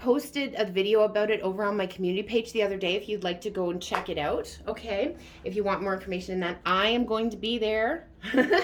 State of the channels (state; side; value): identical; both; correlation 1.00